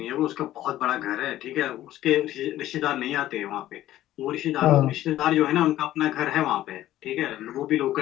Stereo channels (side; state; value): right; quieter; 13.8 dB